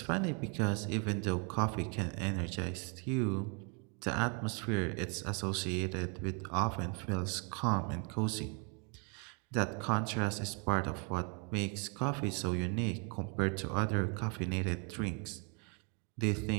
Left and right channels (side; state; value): left; quieter; 36.1 dB